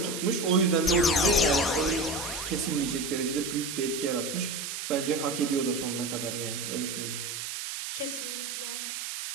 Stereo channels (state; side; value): noise; right; hiss, 5 dB below the sound